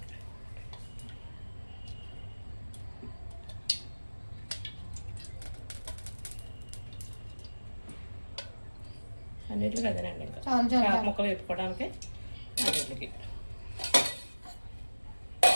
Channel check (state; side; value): inverted; both; correlation -1.00